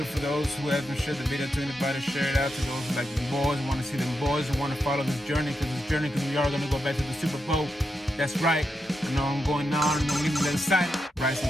for those who haven't shared the video to anybody. Share it out to those who like the boys, want to see them boys, and want to follow this journey, because we are going to go back to the Super Bowl. That's right. I know I'm going on and I'm getting a little excited. Write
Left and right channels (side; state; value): both; normal; correlation 0.86